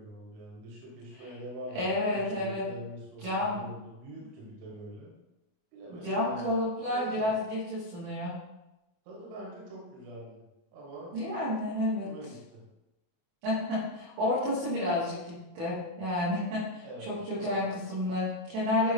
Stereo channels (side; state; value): left; late; 28 ms